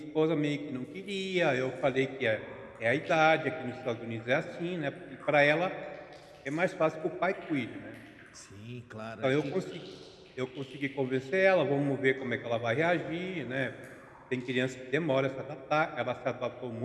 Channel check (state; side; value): identical; both; correlation 1.00